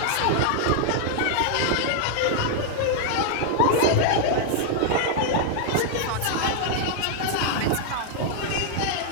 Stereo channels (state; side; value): different; both; correlation 0.00